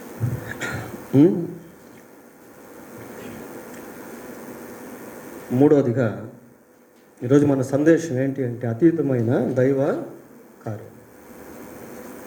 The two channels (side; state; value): both; identical; correlation 1.00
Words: మూడవదిగా ఈరోజు మన సందేశం ఏంటి అంటే అతీతమైన దైవ కార్యం.